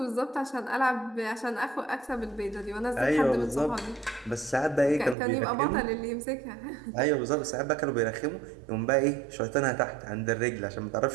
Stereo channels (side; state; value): left; drops out; at 5.2 s